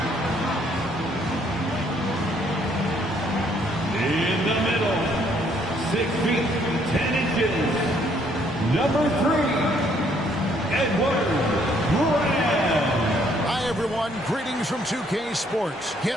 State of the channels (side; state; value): both; normal; correlation 0.67